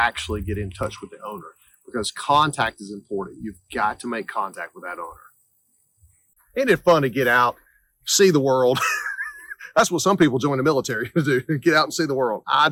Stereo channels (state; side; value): identical; both; correlation 1.00